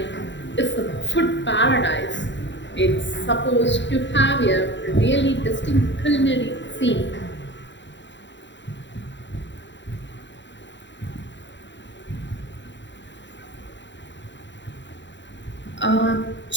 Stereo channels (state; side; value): late; right; 0.53 ms